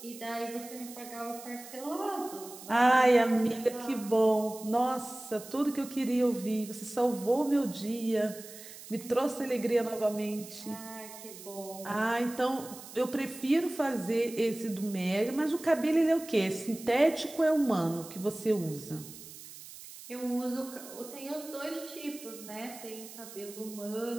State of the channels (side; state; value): right; noise; hiss, 15 dB below the sound